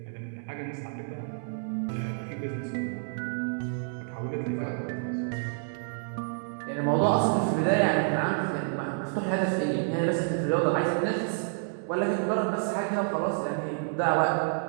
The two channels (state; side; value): silent; left; 59 dB below the other